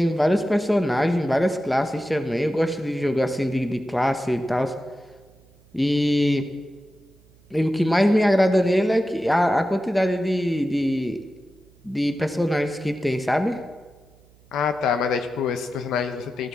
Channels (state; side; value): noise; right; hum, 29 dB below the sound